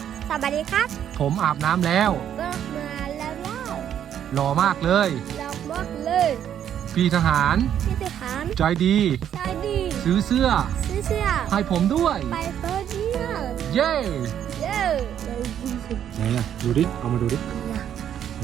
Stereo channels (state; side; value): quieter; left; 9.8 dB